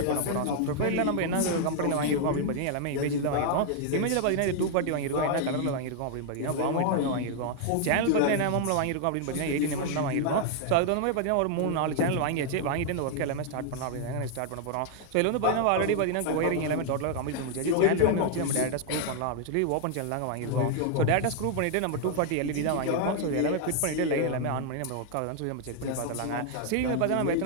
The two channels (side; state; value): both; different; correlation 0.00